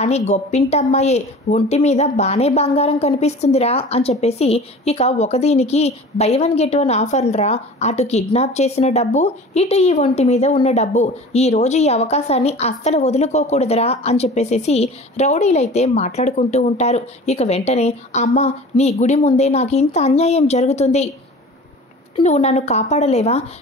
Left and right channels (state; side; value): normal; both; correlation 0.40